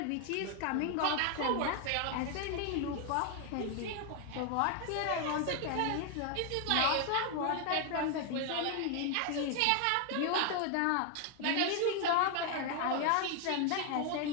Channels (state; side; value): different; both; correlation 0.01